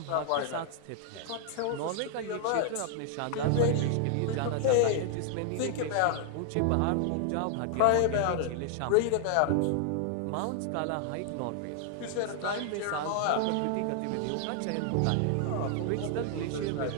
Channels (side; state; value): both; different; correlation 0.00